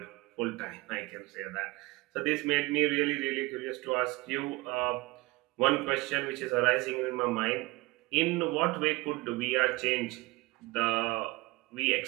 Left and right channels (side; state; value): left; quieter; 22.2 dB